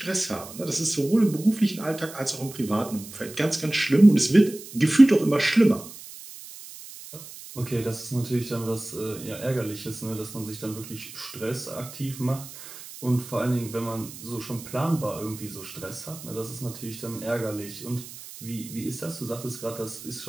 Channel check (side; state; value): right; noise; hiss, 15 dB below the sound